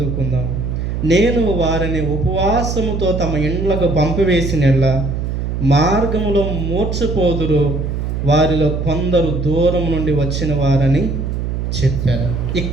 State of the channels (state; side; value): noise; right; hum, 2 dB below the sound